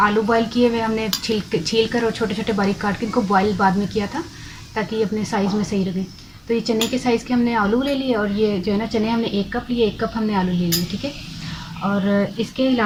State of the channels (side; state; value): both; identical; correlation 1.00